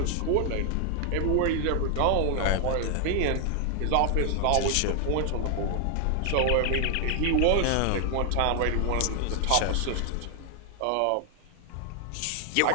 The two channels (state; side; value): different; both; correlation 0.00